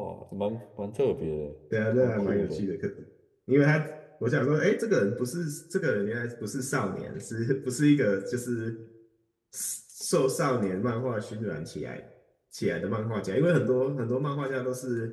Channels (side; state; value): both; identical; correlation 1.00